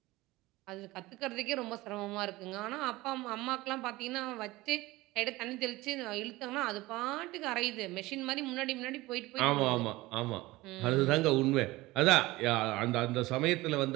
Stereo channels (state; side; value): quieter; left; 19.5 dB